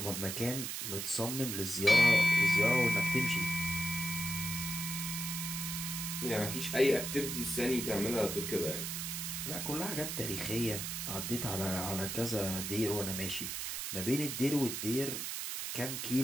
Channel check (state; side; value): noise; right; hiss, 4 dB below the sound